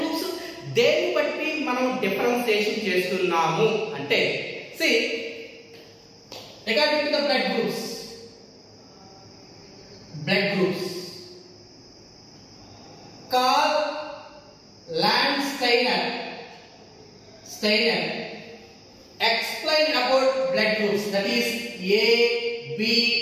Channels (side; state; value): both; identical; correlation 1.00